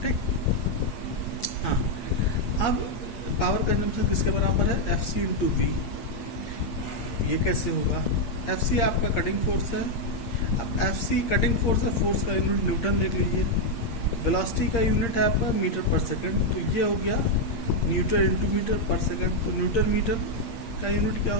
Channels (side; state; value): right; late; 8.6 ms